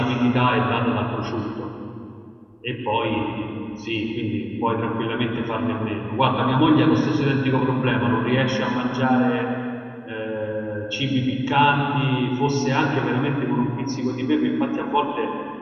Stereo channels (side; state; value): both; identical; correlation 1.00